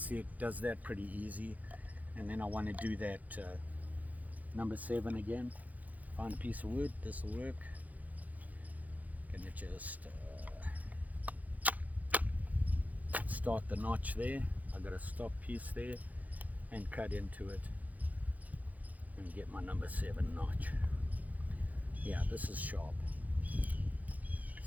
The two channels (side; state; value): left; late; 0.078 ms